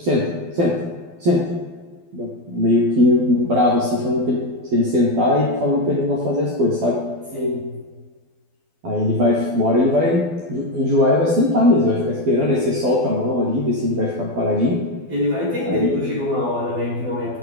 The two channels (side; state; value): left; late; 12 ms